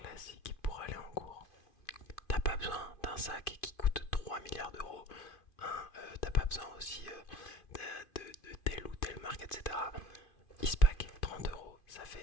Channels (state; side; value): late; right; 2.5 ms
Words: pour aller en cours. T'as pas besoin d'un sac qui coûte 3 milliards d'euros. Hein, t'as pas besoin aussi de telle ou telle marque, etc. Ispac, 30 euros, ça